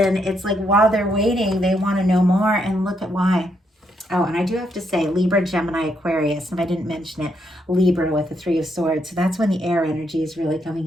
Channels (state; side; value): normal; both; correlation 0.77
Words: it's like while they're waiting, they want to know more, and look at why. Oh, and I do have to say Libra, Gemini, Aquarius. If I didn't mention it, Libra with the 3 of Swords. So that's when the air energy is really